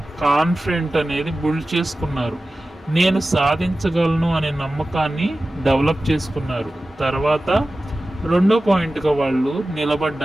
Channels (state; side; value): normal; both; correlation 0.95